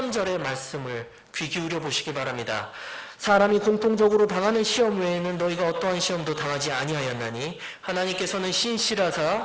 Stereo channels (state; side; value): identical; both; correlation 1.00